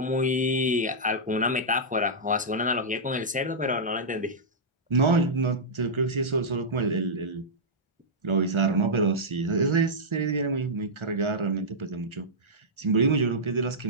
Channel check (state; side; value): normal; both; correlation -0.11